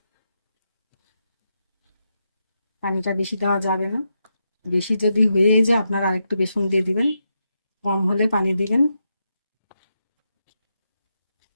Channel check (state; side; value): inverted; both; correlation -0.85